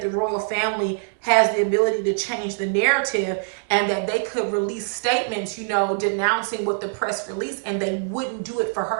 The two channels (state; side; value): silent; left; digital silence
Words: the royal family has the ability to change the narrative and that they could release statements, denouncing what the press released, and they wouldn't do it for